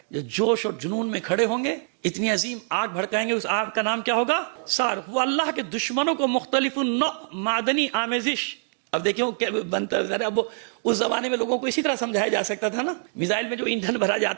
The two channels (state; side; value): silent; left; 62 dB below the other